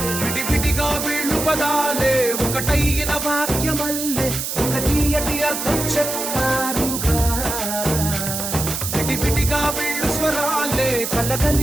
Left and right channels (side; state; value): right; noise; hiss, 4 dB below the sound